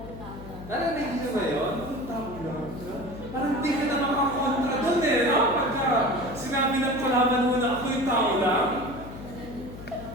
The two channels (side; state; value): left; noise; hum, 13 dB below the sound